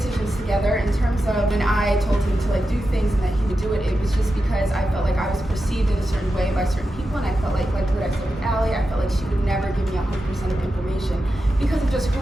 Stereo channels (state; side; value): normal; both; correlation 0.90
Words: together. In terms of when I told him to do things and that he would do it, it was just because I felt like I was perceived in a certain way by certain people, and I felt like what I said with Allie, I felt like she would never give me 100% of information because of just